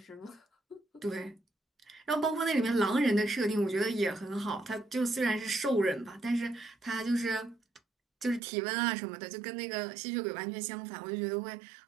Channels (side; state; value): left; drops out; at 8.4 s